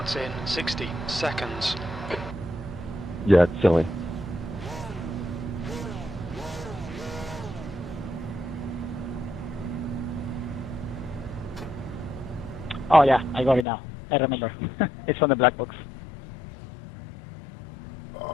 in 60 seconds. Yeah, it's silly. Oh yeah, I got it now. I remember. It's on the black box.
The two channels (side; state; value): right; drops out; at 13.7 s